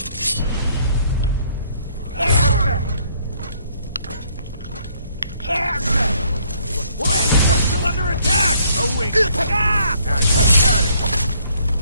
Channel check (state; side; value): inverted; both; correlation -0.65